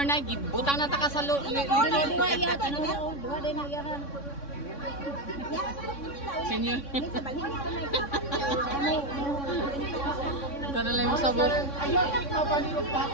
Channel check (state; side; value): late; right; 3.6 ms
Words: Nay, butang na ta ka sa likod. Dua yata na. Dua din na yaran. Senior. Para lang mo sabot. Ayaw kay pabalilog pa